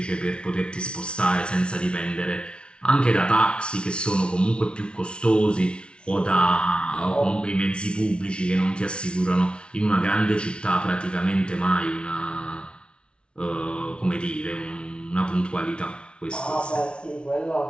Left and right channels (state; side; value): late; right; 0.057 ms